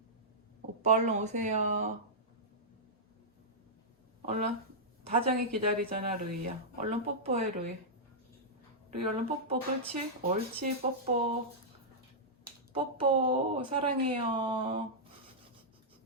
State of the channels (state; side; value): normal; both; correlation -0.11